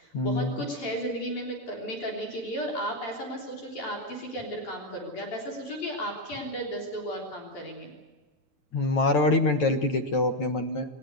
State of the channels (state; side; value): late; right; 6.9 ms